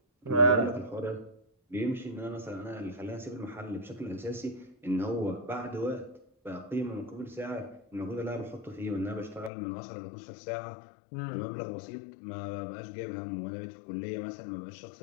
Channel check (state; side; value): drops out; right; at 9.5 s